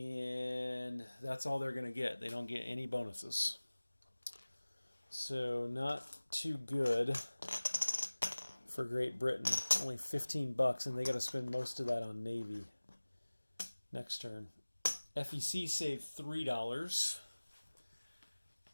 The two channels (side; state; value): both; inverted; correlation -1.00